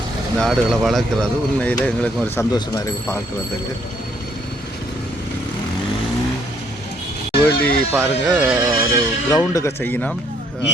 இந்த ஆடுகளை வளர்க்குறது உண்மையில் எங்களுக்கு ஒரு சந்தோஷமாக இருக்குது பார்க்குறதுக்கு. வேலி பாருங்கள், ஒரு கிரவுண்டுக்கு செய்யணும்.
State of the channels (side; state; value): both; normal; correlation 0.67